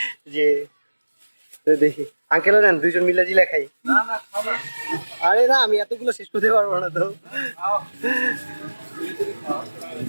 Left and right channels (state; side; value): inverted; both; correlation -1.00